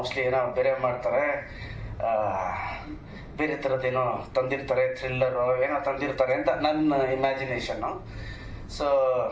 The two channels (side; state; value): both; identical; correlation 1.00